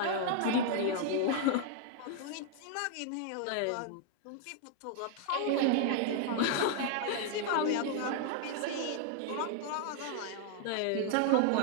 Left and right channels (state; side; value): different; both; correlation 0.00